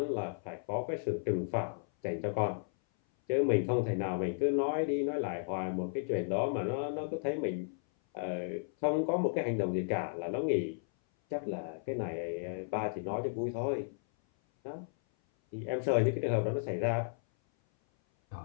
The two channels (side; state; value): right; silent; 55 dB below the other